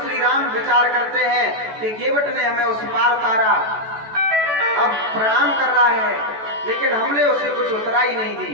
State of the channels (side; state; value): left; late; 14 ms